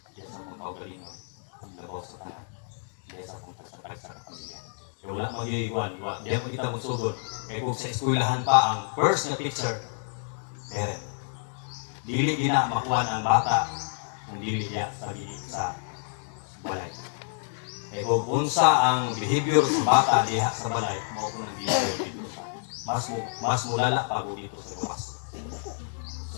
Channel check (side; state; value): right; silent; digital silence